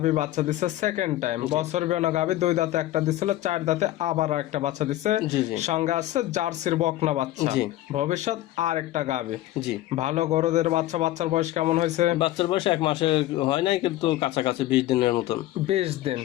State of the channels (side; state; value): right; quieter; 15.0 dB